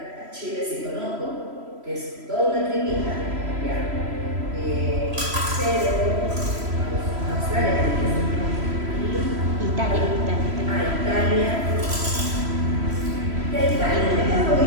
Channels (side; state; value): left; late; 3.0 ms